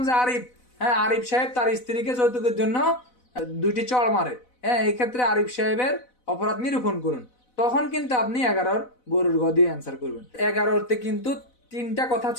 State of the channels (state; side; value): late; right; 4.0 ms